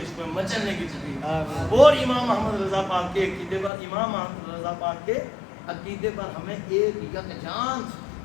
میں مچلنے کی توفیق، اور امام محمد رضا پاک کے عقیدے پر، امام محمد رضا پاک کے عقیدے پر ہمیں ایک یکجان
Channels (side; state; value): right; drops out; at 3.7 s